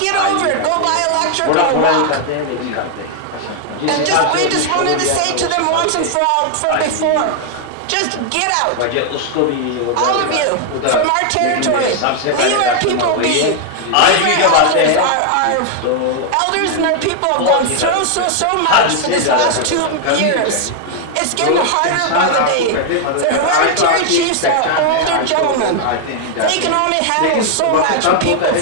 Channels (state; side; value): different; both; correlation 0.00